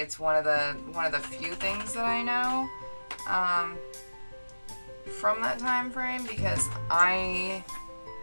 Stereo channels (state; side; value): inverted; both; correlation -1.00